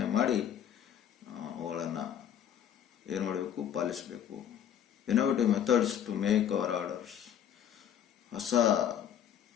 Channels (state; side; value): quieter; right; 9.6 dB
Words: ಮಾಡಿ ಅವುಗಳನ್ನು ಏನು ಮಾಡಬೇಕು, ಪಾಲಿಸಬೇಕು. Innovative methods to make our orders. ಹೊಸ